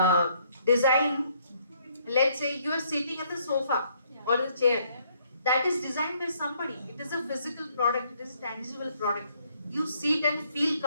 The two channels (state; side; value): inverted; both; correlation -0.68